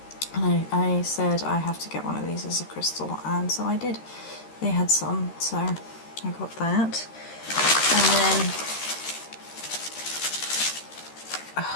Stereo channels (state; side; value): late; right; 13 ms